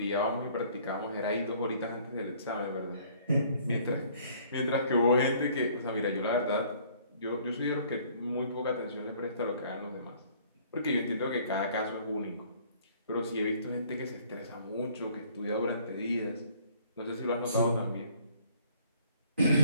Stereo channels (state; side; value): inverted; both; correlation -0.58